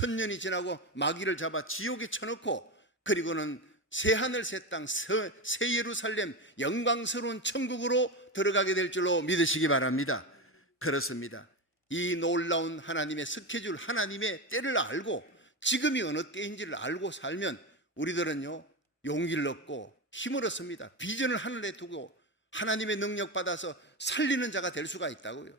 지나고 마귀를 잡아 지옥에 쳐놓고 그리고는 새하늘 새 땅 새 예루살렘 영광스러운 천국으로 들어가게 될 줄로 믿으시기 바랍니다. 그렇습니다. 이 놀라운 하나님의 스케줄, 하나님의 때를 알고 지금이 어느 때인지를 알고 살면 우리들은요 용기를 얻고 힘을 얻습니다. 비전을 하늘에 두고 하나님의 능력 받아서 살리는 자가 될 수가 있다고요.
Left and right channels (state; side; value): normal; both; correlation 0.17